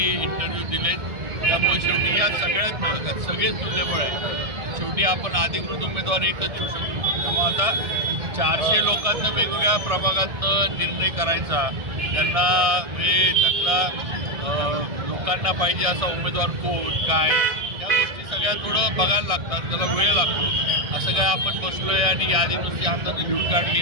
इंटरव्ह्यू दिलेत. त्यामुळे शेवटी या सगळ्यात सगळेच तुल्यबळ आहे. शेवटी आपण अधिकृत उमेदवार एकच देऊ शकतो. त्यामुळे आता 400 लोकांना वेगवेगळ्या प्रभागातनं निर्णय करायचा, त्यांना म्हणजे त्यातला लोकांना पाहिजे असा उमेदवार कोण काय या गोष्टी सगळ्या थोडं बघायला लागतात, त्याला वेळ लागतो. असं काय आपण बसलोय आणि यादी नुसती हाताने लिहून काढली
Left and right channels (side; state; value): left; late; 1.6 ms